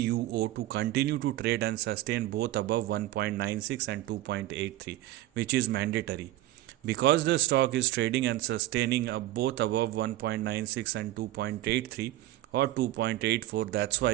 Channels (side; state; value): left; quieter; 15.5 dB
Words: to continue to trade and sustain both above 1.96 and 2.83, which is mandatory. Because the stock is trading and sustaining both above 1.96 and 2.83 or 2.84, that's